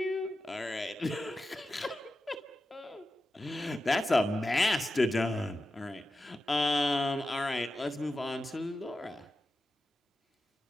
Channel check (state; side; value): normal; both; correlation 0.91